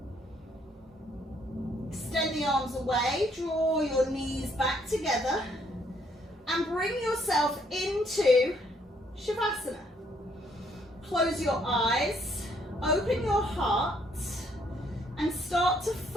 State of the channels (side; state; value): both; normal; correlation 0.68